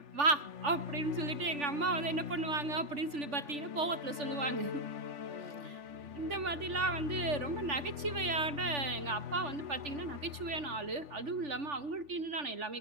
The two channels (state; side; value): late; left; 3.4 ms